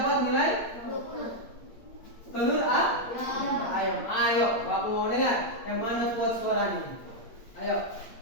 nilai 20. Telur ayo Bapak mau dengar yang mana kuat suaranya. Ayo.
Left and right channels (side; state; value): right; late; 8.6 ms